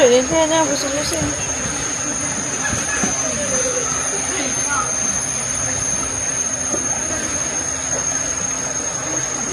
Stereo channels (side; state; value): both; identical; correlation 1.00